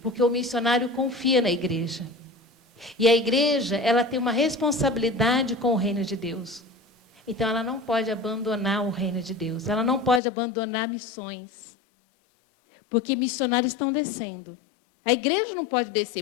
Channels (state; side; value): drops out; right; at 10.2 s